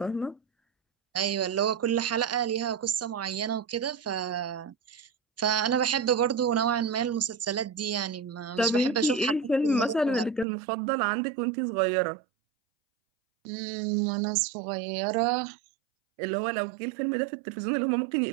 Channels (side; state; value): left; drops out; at 10.5 s